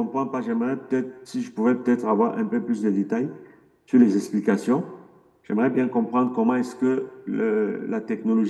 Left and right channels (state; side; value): identical; both; correlation 1.00